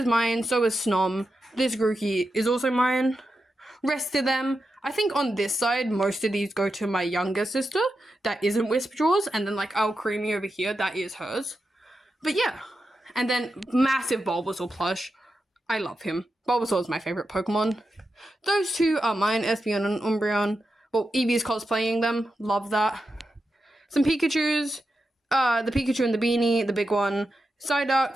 mine, so is Snom. This Grookey is also mine. Rest of them, I think on this side, most of these go to my younger sister. That isn't Whisperjaws, and then, like, Creamy over here, that is hers. But yeah. And then massive Bulbasaur plush. I love him. Bulbasaur is my favorite Pokemon. Those two are mine, Espeon and Umbreon. Well, Eevee's cosplaying them. Love that. Some Pikachus. The Pikachu and the beanie, the big one.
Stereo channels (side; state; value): both; normal; correlation 0.89